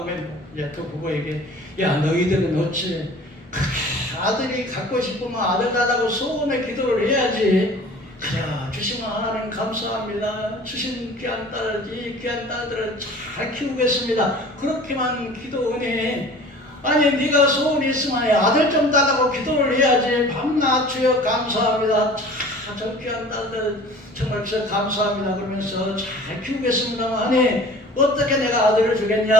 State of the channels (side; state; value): both; normal; correlation 0.45